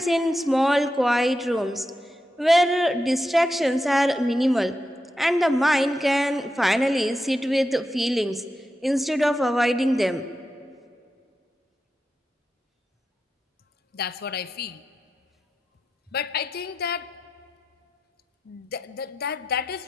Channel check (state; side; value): normal; both; correlation 0.88